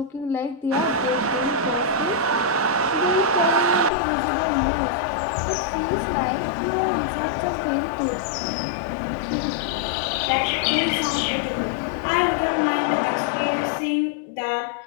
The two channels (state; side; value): drops out; right; at 3.9 s